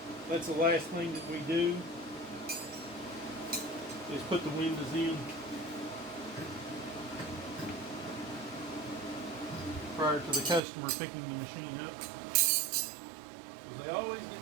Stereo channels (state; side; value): drops out; left; at 10.6 s